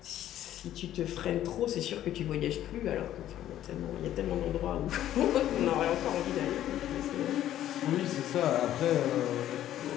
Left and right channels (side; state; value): right; quieter; 12.2 dB